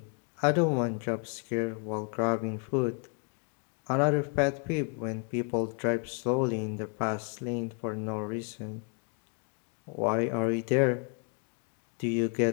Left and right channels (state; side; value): quieter; right; 39.3 dB